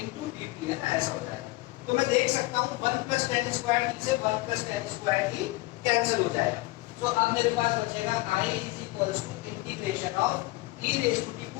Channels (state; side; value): quieter; right; 21.1 dB